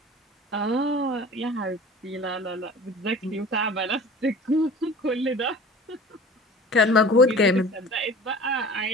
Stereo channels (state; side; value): normal; both; correlation 0.41